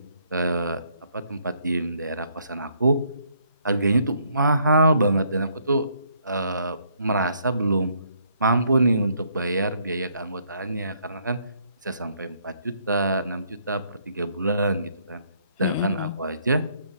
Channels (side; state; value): both; inverted; correlation -0.69